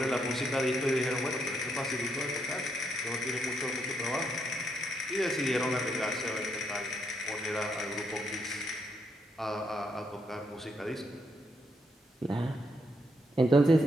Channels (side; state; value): both; normal; correlation 0.78